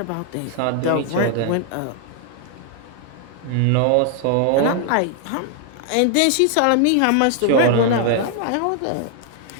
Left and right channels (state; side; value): different; both; correlation 0.00